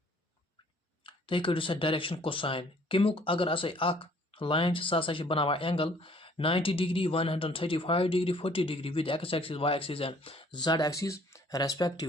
तुम कड़ो सा direction cosine कमुक अगर line सह बनावा angle 90 degree 135 degree 40 degree with x axis y axis and z axis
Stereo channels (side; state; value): both; normal; correlation 0.58